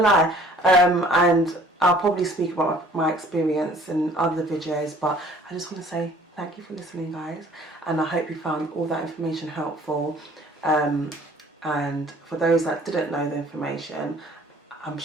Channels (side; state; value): both; normal; correlation 0.54